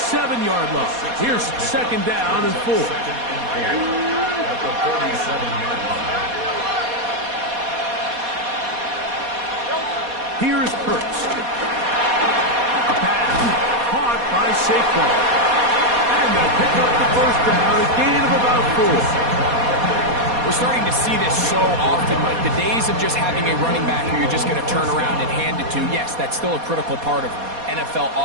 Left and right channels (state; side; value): late; left; 4.2 ms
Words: line. Here's second down and 4. At the 47-yard line. Here's Hurts. A pass caught by Saquon. And they'll pick up the first down, a gain of about 4. We're starting to see this so often, Mike. The days of just having a running back who you're just going to turn around and hand it to, yes, that's still a critical part of NFL